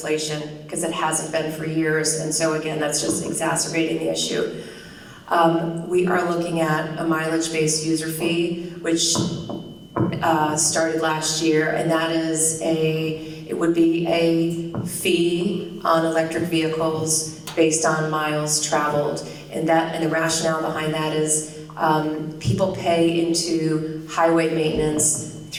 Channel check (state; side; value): identical; both; correlation 1.00